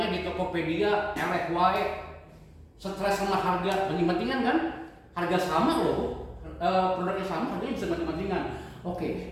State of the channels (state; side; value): identical; both; correlation 1.00